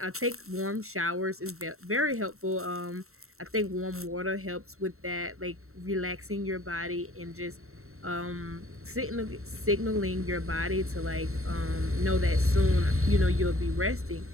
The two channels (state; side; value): late; left; 0.63 ms